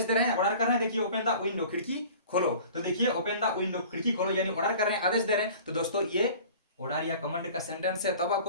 दे रहे हैं, ऑर्डर कर रहे हैं। देखिए ओपन द विंडो, खिड़की खोलो। तो देखिए ओपन द विंडो, खिड़की खोलो, यानी ऑर्डर कर रहे हैं, आदेश दे रहे हैं। तो दोस्तों ये ऑर्डर या कमांड का सेंटेंस है। तब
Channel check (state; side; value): inverted; both; correlation -0.44